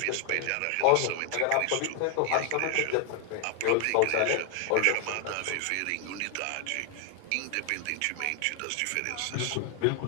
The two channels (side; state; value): both; different; correlation 0.00